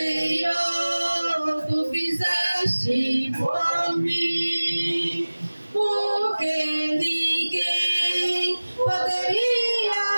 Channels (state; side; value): inverted; both; correlation -1.00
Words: tu fizeste por mim, porque ninguém